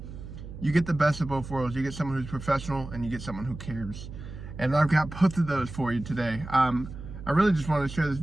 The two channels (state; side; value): noise; right; hum, 12 dB below the sound